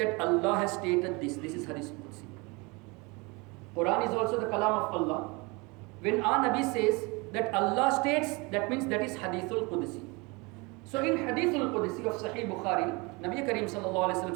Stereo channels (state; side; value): quieter; left; 27.1 dB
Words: Allah has stated this. This is Hadithul Qudsi. Quran is also the kalam of Allah. When our Nabi says that Allah states, that means that is Hadithul Qudsi. So in Hadithul Qudsi of Sahih Bukhari, Nabi Kareem sallallahu alayhi wasallam